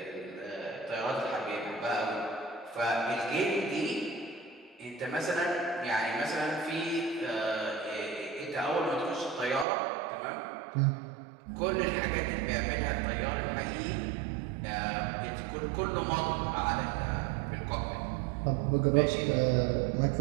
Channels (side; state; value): left; drops out; at 9.7 s